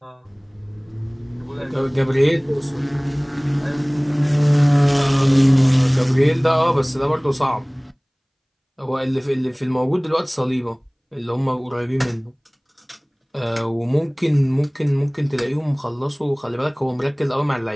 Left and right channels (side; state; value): both; identical; correlation 1.00